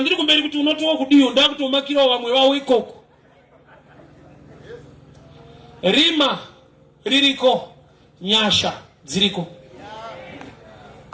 kumberi kuti unotowa kudiyo, ndakutomakirawo vamwe vavo ikoko. Rima ririko, nyasha dziriko.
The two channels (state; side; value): identical; both; correlation 1.00